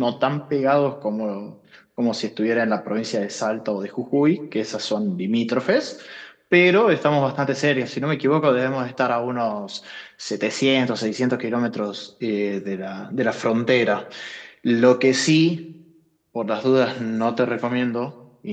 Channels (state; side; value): identical; both; correlation 1.00